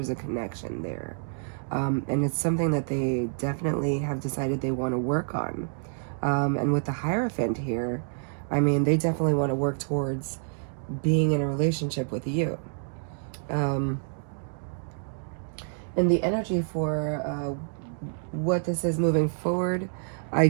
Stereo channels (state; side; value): silent; left; digital silence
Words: a connection there, and it's something that they definitely have decided they want to work on. And with the Hierophant here, I mean, they definitely want to work towards being in a relationship with you. And the energy for what this is moving forward, I